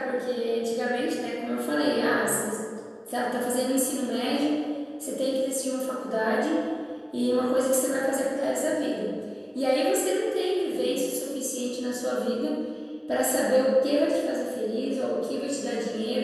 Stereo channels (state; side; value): identical; both; correlation 1.00